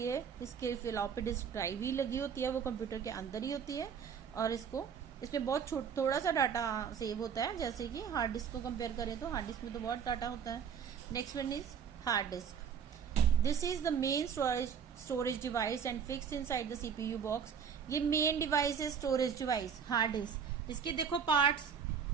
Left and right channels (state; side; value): quieter; left; 7.2 dB